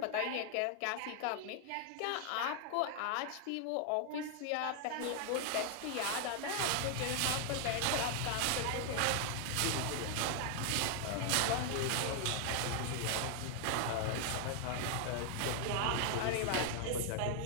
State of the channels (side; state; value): both; different; correlation 0.00